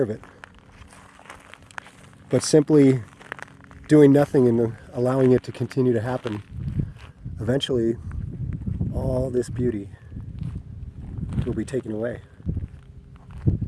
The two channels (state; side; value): identical; both; correlation 1.00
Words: of it. But simply doing nothing and allowing it to continue to happen, eventually all this beauty will be taken away.